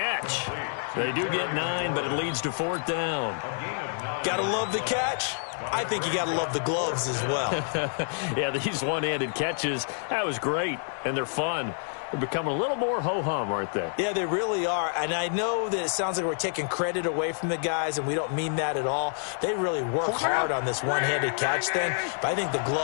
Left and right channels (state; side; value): silent; right; digital silence